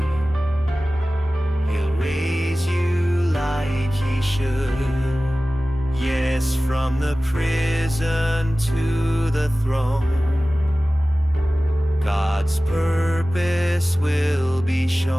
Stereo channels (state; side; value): normal; both; correlation 0.97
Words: He'll raise you like He should. Yes, from the prison to the throne, God's purpose will be